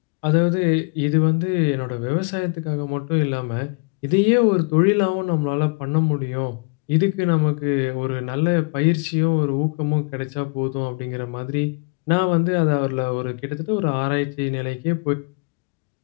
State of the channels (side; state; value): right; quieter; 32.7 dB